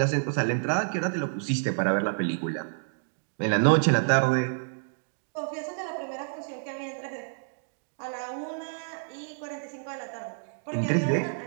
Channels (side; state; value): left; silent; digital silence